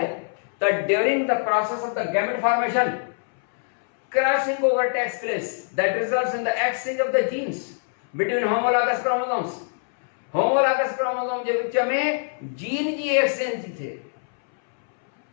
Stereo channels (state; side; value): silent; right; 63 dB below the other